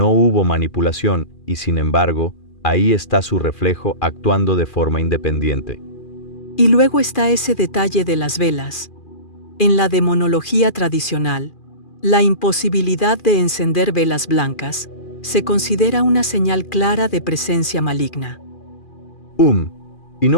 hubo manipulación y, sin embargo, ahí está su reflejo actuando de forma independiente. Y luego está ese detalle de las velas. En la demonología tradicional, la imposibilidad de encender velas blancas se considera una señal clara de presencia maligna. Y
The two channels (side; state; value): right; late; 2.4 ms